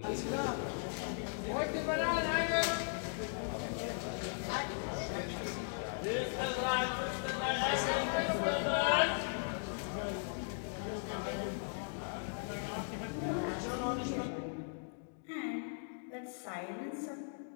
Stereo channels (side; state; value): right; silent; digital silence